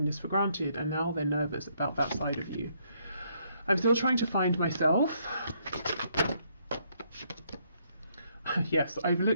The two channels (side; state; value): both; inverted; correlation -0.71